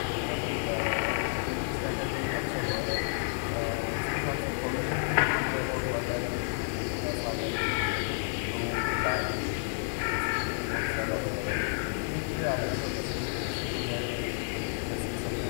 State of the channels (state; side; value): silent; right; digital silence